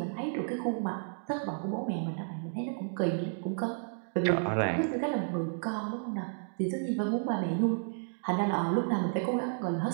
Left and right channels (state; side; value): silent; left; digital silence